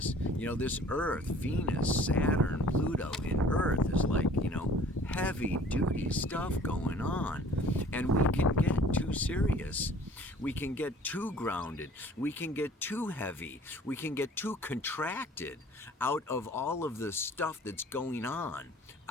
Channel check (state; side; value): normal; both; correlation 0.51